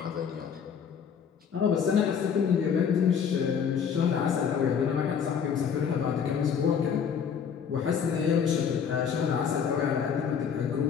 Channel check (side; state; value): right; quieter; 7.2 dB